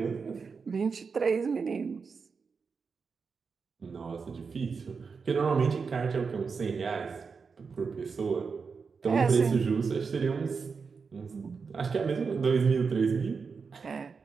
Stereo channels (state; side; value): quieter; left; 5.3 dB